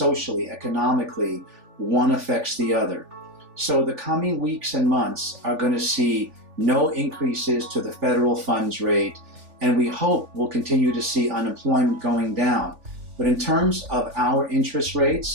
economically, one affects the other. So the coming weeks and months are going to see no increases to the federal funds rate, and we hope we'll continue to see unemployment going down. But in terms of our interest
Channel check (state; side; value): late; left; 3.4 ms